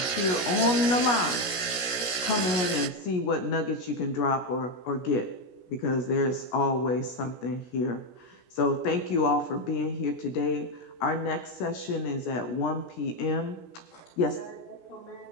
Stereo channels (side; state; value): right; late; 17 ms